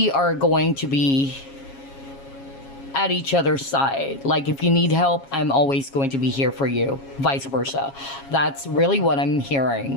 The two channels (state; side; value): late; right; 7.3 ms